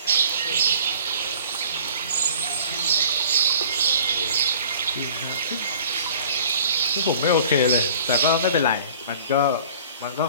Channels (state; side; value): inverted; both; correlation -0.48